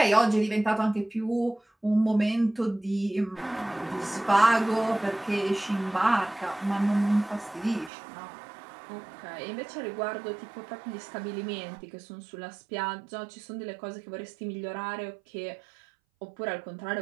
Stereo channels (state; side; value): drops out; left; at 7.9 s